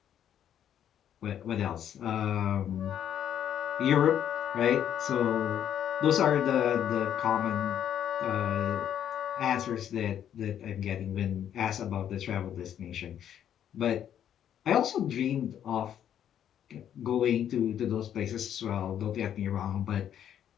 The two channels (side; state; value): right; quieter; 9.9 dB